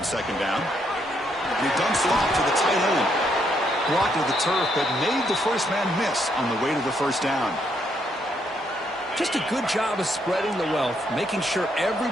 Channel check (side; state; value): both; normal; correlation 0.74